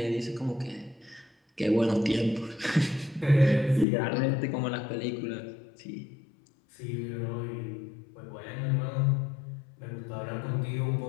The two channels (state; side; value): drops out; right; at 3.9 s